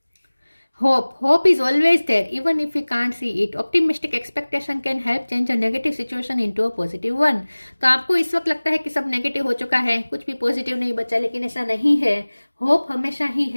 hope is always there even if we can't see it. Optimistic expectation can help change a negative situation into a positive one. तो आपको इस वक्त लगता है कि सब नेगेटिव हो चुका है, कुछ भी पॉजिटिव नहीं बचा, लेकिन ऐसा नहीं है। होप हमेशा ही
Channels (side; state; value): both; inverted; correlation -1.00